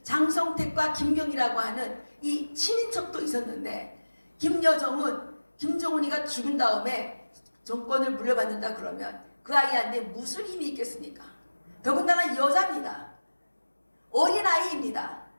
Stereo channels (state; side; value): inverted; both; correlation -1.00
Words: 장성택과 김경이라고 하는 이 친인척도 있었는데, 김여정은 김정은이가 죽은 다음에 정권을 물려받는다 그러면 그 아이한테 무슨 힘이 있겠습니까? 더군다나 여자입니다. 어린아이입니다.